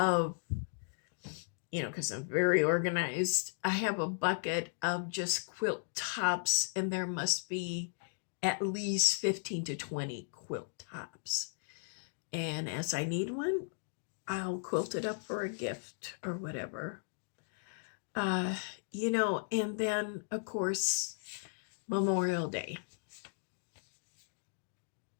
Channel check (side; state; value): right; silent; digital silence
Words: because I'm very organized, I have a bucket of just quilt tops, and there must be at least 15 to 20 quilt tops. And as I need one, I'll quilt it up for a gift or whatever. And then, of course, Memorial Day.